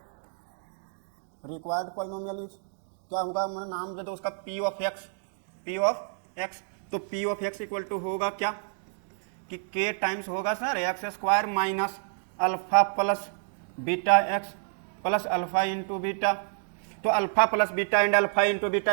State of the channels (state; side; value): silent; left; digital silence